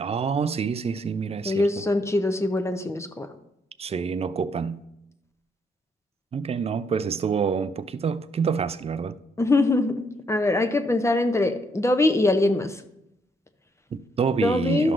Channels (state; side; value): normal; both; correlation 0.72